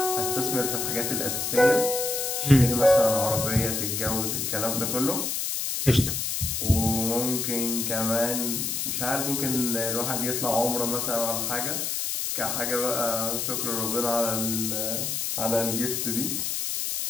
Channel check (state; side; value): noise; left; hiss, 1 dB below the sound